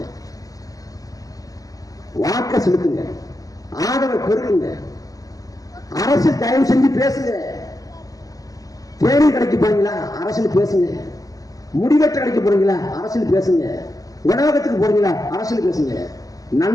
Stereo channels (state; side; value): late; right; 0.17 ms